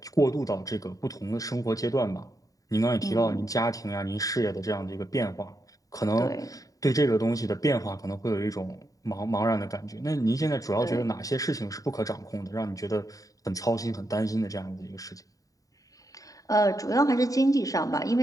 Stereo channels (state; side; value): late; right; 0.17 ms